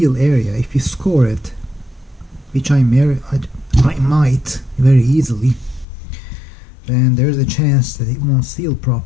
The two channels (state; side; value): drops out; right; at 5.9 s